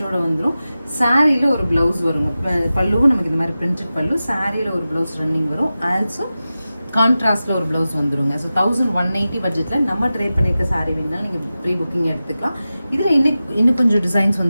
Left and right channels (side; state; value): both; inverted; correlation -0.94